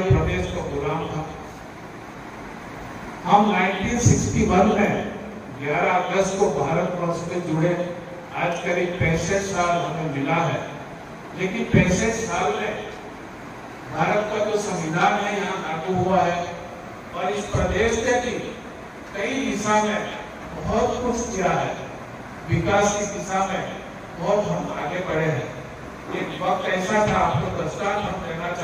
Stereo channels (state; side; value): identical; both; correlation 1.00